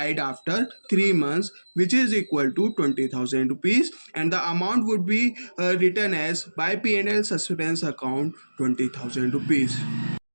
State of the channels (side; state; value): both; inverted; correlation -1.00